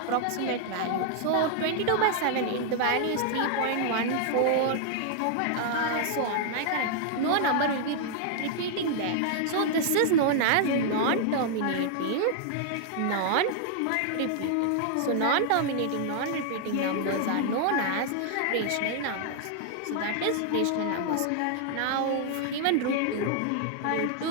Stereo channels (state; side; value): different; both; correlation 0.00